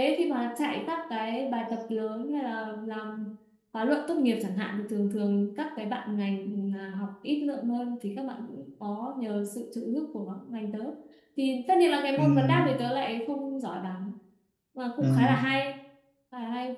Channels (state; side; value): identical; both; correlation 1.00